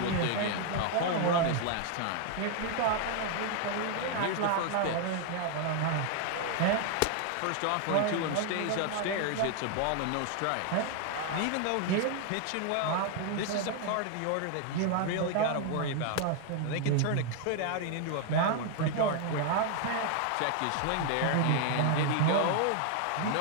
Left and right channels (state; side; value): different; both; correlation 0.00